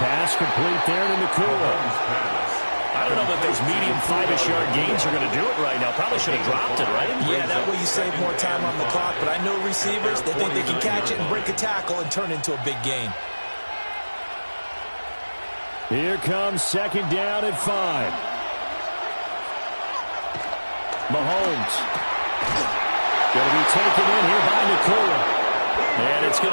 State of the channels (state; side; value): inverted; both; correlation -1.00